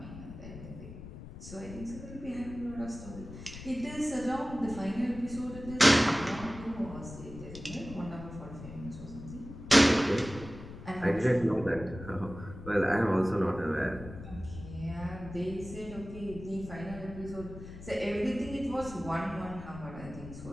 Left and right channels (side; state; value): left; noise; rumble, 13 dB below the sound